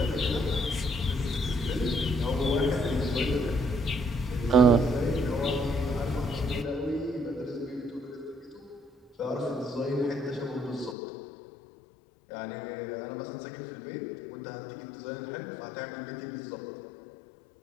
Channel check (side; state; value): right; drops out; at 11.0 s